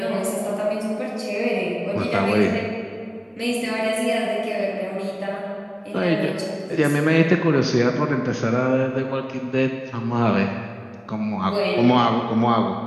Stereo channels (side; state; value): both; identical; correlation 1.00